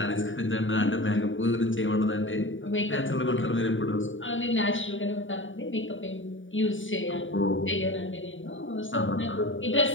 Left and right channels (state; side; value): late; right; 0.56 ms